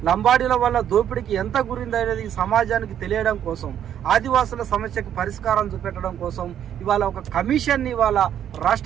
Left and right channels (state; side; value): quieter; left; 9.9 dB